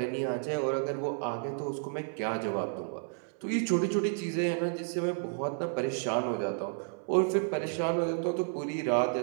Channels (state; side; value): silent; left; 57 dB below the other